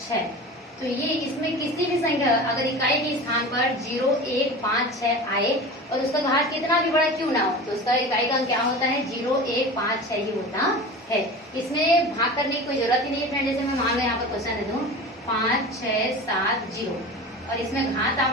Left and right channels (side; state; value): both; normal; correlation 0.33